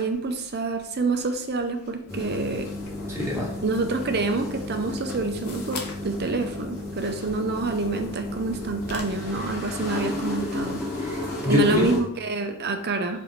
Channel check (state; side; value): normal; both; correlation 0.32